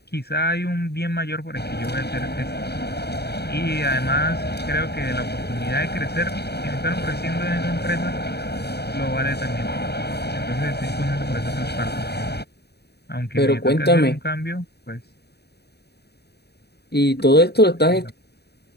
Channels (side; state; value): right; late; 0.48 ms